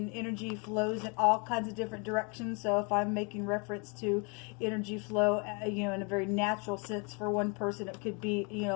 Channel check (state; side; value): quieter; right; 33.7 dB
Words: energy flows in all kinds of different directions. So if I'm making reference to energy flow, in a very natural sense for one person, it could be,